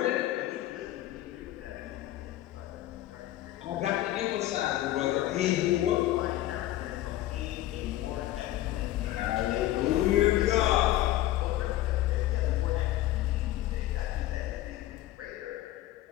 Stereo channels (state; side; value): quieter; right; 14.8 dB